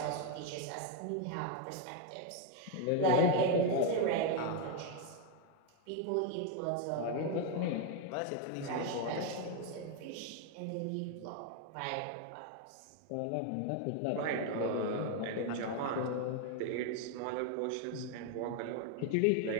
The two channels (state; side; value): different; both; correlation 0.01